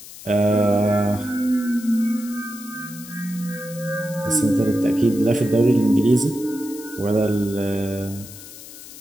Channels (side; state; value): left; noise; hiss, 16 dB below the sound